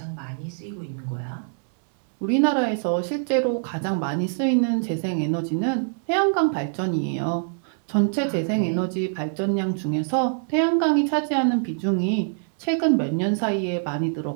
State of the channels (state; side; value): silent; left; digital silence